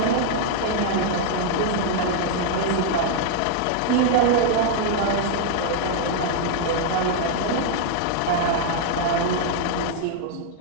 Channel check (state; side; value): different; both; correlation -0.01